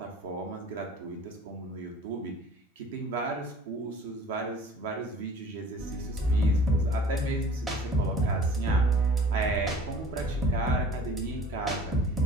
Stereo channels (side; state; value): both; normal; correlation 0.46